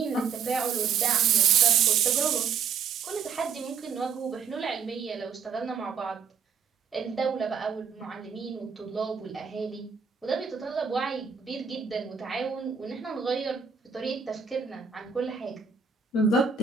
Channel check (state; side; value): quieter; left; 6.6 dB